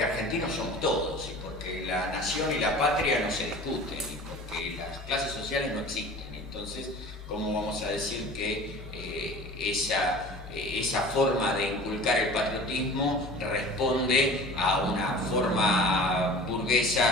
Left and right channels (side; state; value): both; normal; correlation 0.41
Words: argentinos somos todos, y porque la nación y la patria no se discuten, y porque las clases sociales no existen. Entonces, ¿cómo vamos a decir que esa forma de inculcar el patriotismo responde a una forma